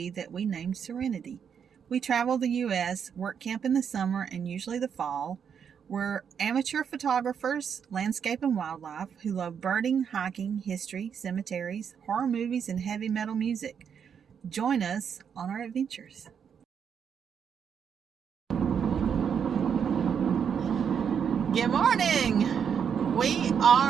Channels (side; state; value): left; quieter; 7.5 dB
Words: that we named Serenity. We travel the U.S., work camp in the summer and usually the fall. We're amateur photographers, landscape and wildlife, who love birding, hiking, history, cemeteries, horror movies, and heavy metal music. Join us on our adventures. Good morning! We